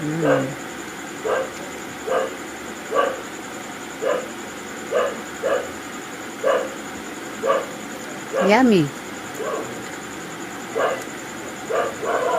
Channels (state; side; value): identical; both; correlation 1.00